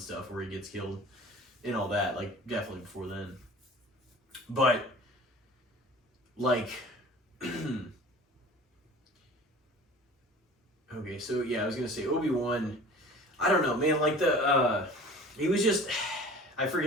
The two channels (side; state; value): both; normal; correlation 0.43